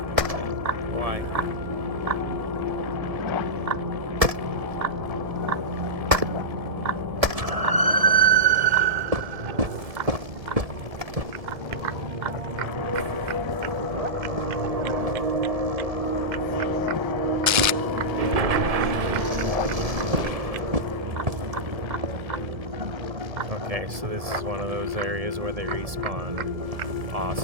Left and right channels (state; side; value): late; left; 1.7 ms